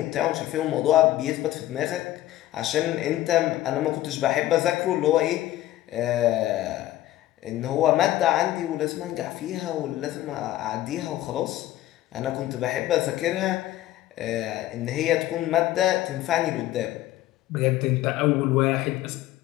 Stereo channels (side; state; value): right; quieter; 14.7 dB